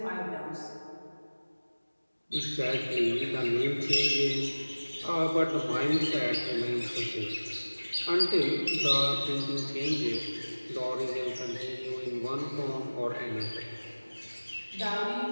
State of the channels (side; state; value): both; inverted; correlation -1.00